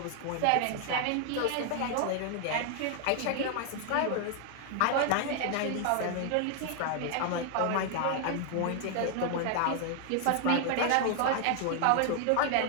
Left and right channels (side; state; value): both; different; correlation 0.00